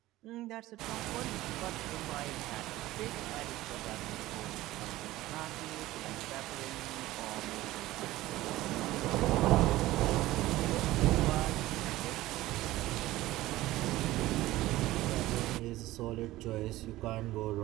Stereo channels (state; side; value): quieter; left; 16.8 dB